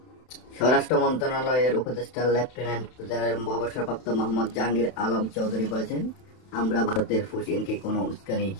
স্বরাষ্ট্র মন্ত্রণালয়ের উপদেষ্টা লেফটেন্যান্ট জেনারেল অবসরপ্রাপ্ত মোহাম্মদ জাহাঙ্গীর আলম চৌধুরী বলেছেন, আমরা ভারতের পুশ ইনকে কোনো উস্কানি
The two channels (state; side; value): late; right; 31 ms